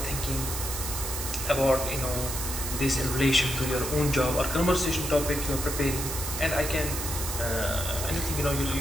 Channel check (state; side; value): noise; right; hiss, 5 dB below the sound